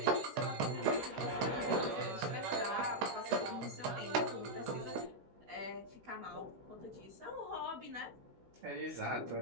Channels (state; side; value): late; left; 16 ms